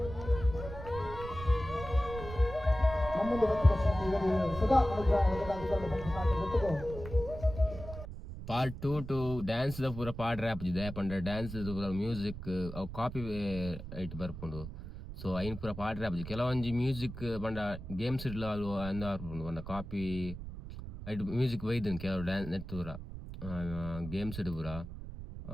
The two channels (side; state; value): right; noise; rumble, 10 dB below the sound